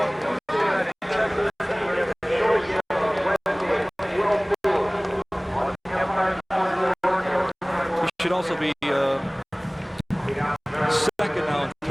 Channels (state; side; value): identical; both; correlation 1.00